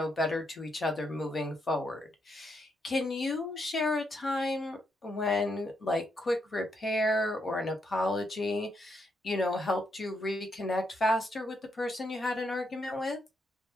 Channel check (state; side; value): normal; both; correlation 0.79